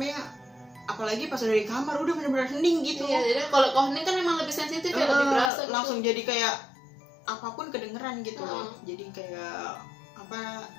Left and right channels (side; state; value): right; drops out; at 5.5 s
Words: apalagi pas udah di kamar udah bener-bener hening gitu. Iya, jadi kalau hening kan memang lebih sensitif ya, lebih berasa gitu. Langsung jadi kayak apapun kedengeran gitu loh. Jadi kayak